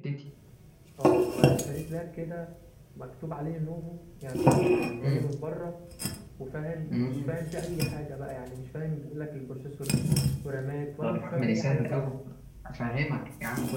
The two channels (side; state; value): both; identical; correlation 1.00